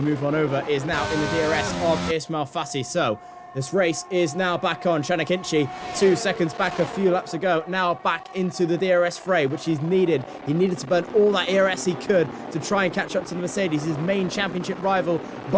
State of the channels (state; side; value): identical; both; correlation 1.00